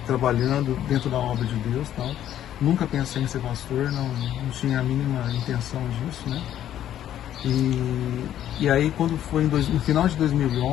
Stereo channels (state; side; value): quieter; right; 11.3 dB